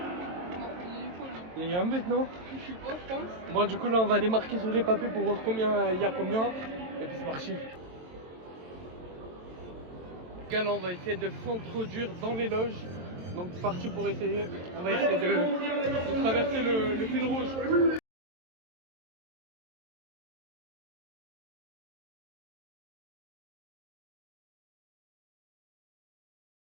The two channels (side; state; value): left; late; 23 ms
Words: Il y a un but non? Je sais pas, je pense. Bon du coup là on va aller marquer sur les papiers pour voir combien il y a combien. Et puis c'est parti. Les gars là on va essayer de s'introduire dans les loges. Donc c'est parti pour essayer. On va essayer de traverser le fil rouge.